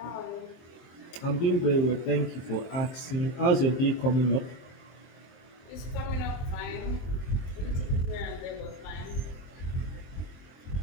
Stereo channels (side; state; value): right; late; 23 ms